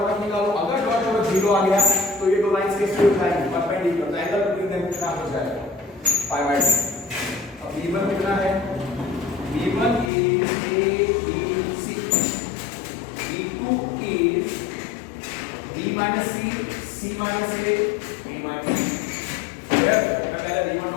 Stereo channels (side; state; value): right; drops out; at 10.1 s